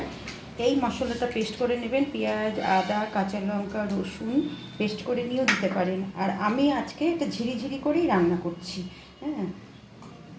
এই মশলাটা পেস্ট করে নেবেন, পেঁয়াজ আদা কাঁচা লঙ্কা রসুন পেস্ট করে নিয়েও দিতে পারেন। আর আমি আজকে এটা ঝিরিঝিরি করেই রান্না করছি। হ্যাঁ,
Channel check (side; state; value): both; identical; correlation 1.00